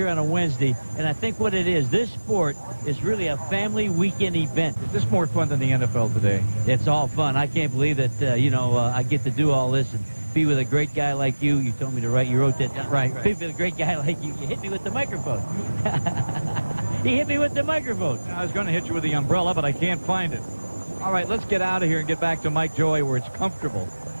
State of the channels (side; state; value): both; inverted; correlation -1.00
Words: on a Wednesday, and I think what it is, this sport is really a family weekend event. Is this more fun than the NFL today? It's all fun. I can't believe that, I get to do all this and be with a great guy like you. You told me to write, you wrote that down. Right. Be with a great guy like you. You hit me with the microphone. He hit me with the microphone. I was going to hit you with the umbrella, but I can't find it. All right, let's get out of here and get back to Mike Joy where it's comfortable.